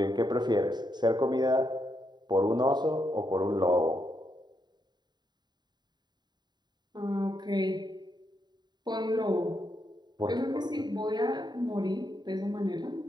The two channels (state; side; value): late; left; 0.21 ms